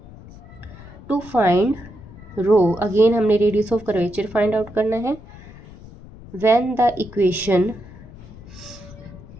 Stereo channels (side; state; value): left; noise; rumble, 18 dB below the sound